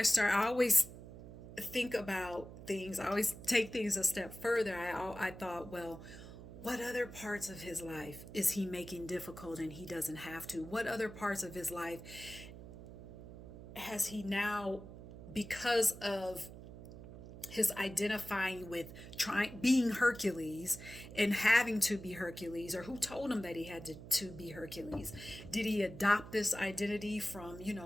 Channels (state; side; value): noise; right; hum, 14 dB below the sound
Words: always think about things. I always take things a step further. I thought, well, what other parts of his life is he making difficult and he doesn't have to? What other parts of his life has he now, because of his identifying with being Hercules and having to be Hercules, or who told him that he had to be Hercules? Did he adopt this identity from,